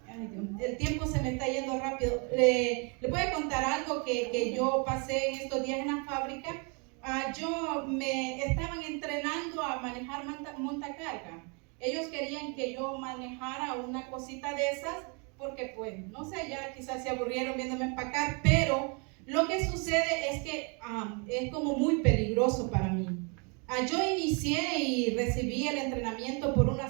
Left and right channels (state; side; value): quieter; left; 34.3 dB